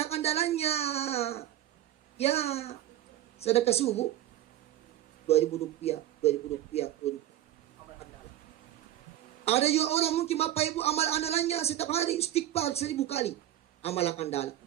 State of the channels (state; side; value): quieter; left; 13.2 dB